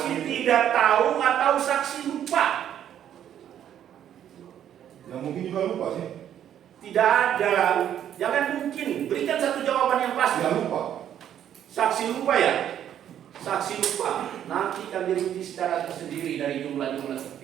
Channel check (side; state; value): left; quieter; 10.2 dB